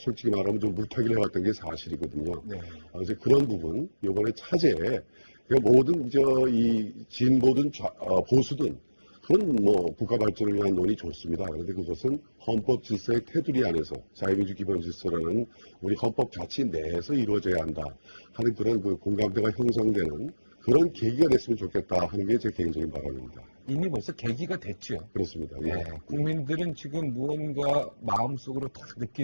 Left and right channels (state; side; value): inverted; both; correlation -1.00